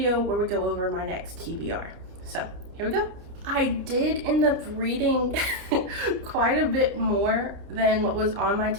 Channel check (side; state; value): left; late; 29 ms